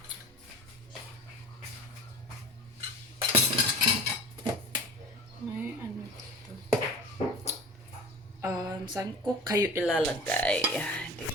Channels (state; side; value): normal; both; correlation 0.39